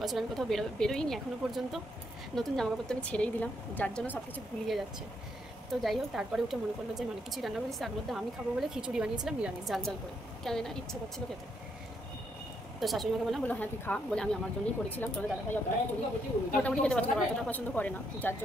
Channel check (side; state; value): both; normal; correlation 0.76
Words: আমি কোথাও বেরোইনি এখনও পর্যন্ত। নতুন জামাকাপড় তো আমি ছেড়েই দিলাম, যার জন্য সব কিছু ভুলিয়ে যাচ্ছে। তো যাই হোক, তারপরে উঠে মনে পড়লো যে অনেক কিছুই রান্না করেছি, তার মধ্যে আমি খাবো বলে খিচুড়ি বানিয়েছিলাম নিরামিষ, জাল করে, কেন না ইচ্ছা করছিল খেতে। তো শাশুড়িমাকে বললো হ্যাঁ তুই খা, বলে আমি আমার জন্যই করেছিলাম। তোমাদের দাদাভাই মোটামুটি খেতে পছন্দ করে, অতটা পছন্দ করে না, যার